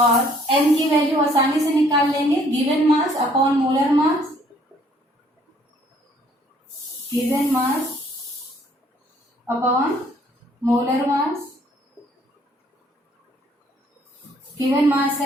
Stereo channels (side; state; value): both; normal; correlation 0.62